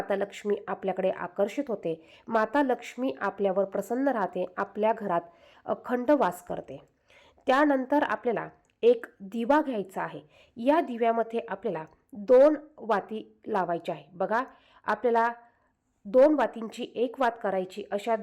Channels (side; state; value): both; identical; correlation 1.00